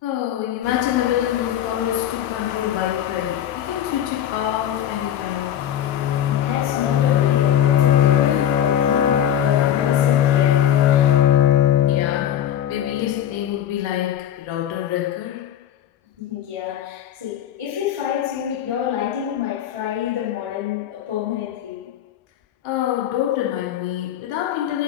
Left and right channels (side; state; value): right; quieter; 10.7 dB